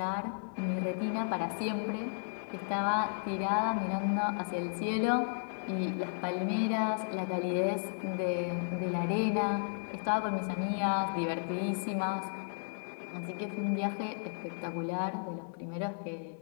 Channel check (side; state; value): right; silent; 55 dB below the other